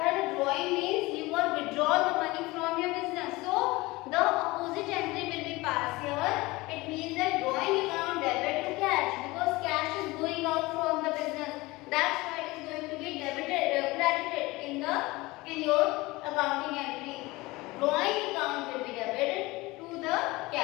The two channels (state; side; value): quieter; right; 21.5 dB